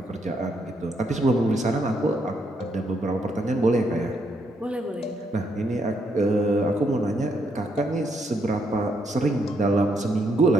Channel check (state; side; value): normal; both; correlation 0.76